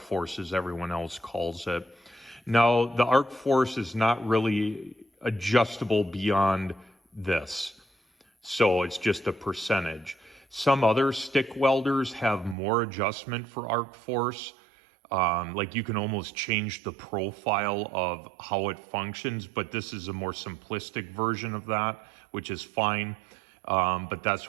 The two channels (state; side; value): drops out; left; at 12.6 s